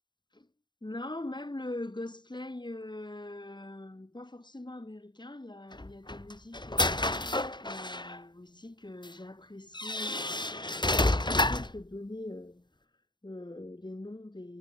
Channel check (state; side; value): late; right; 0.22 ms